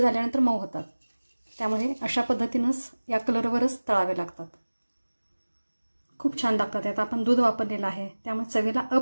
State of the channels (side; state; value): both; inverted; correlation -1.00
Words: मऊ होतात. त्यामुळे अशा पद्धतीनंच या कलरवरच तळावे लागतात. खूप छान लागतात. आता आपण दूध वापरलेलं आहे त्यामुळे चवीला